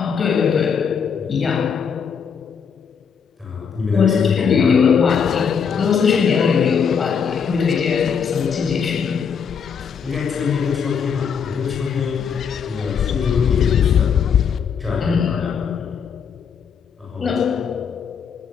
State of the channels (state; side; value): quieter; right; 6.7 dB